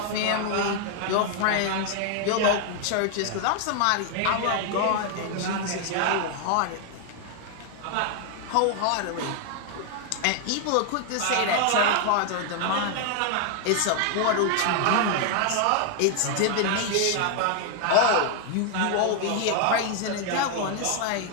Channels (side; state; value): both; different; correlation 0.00